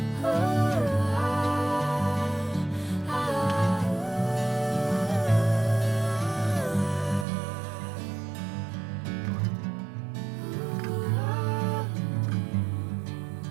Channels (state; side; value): drops out; left; at 7.2 s